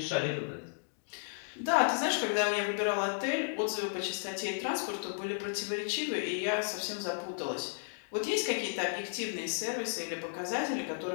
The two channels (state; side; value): silent; right; digital silence